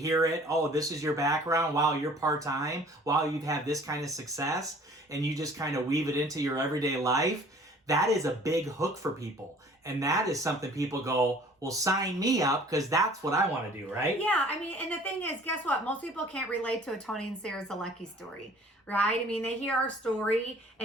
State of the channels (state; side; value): normal; both; correlation 0.51